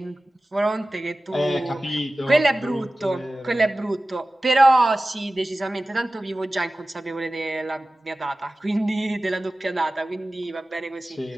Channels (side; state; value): both; normal; correlation 0.96